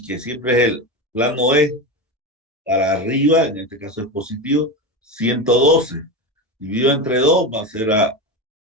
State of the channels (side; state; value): both; normal; correlation 0.20